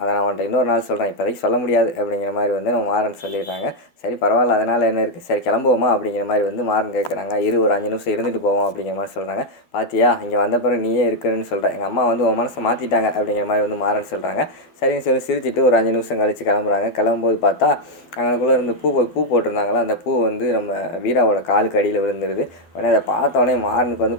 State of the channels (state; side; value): late; right; 12 ms